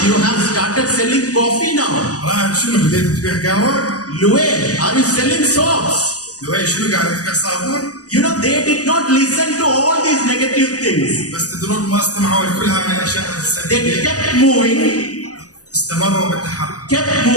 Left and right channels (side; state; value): right; late; 0.67 ms